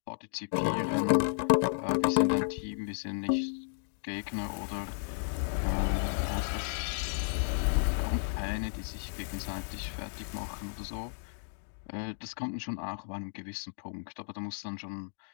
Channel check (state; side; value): silent; right; digital silence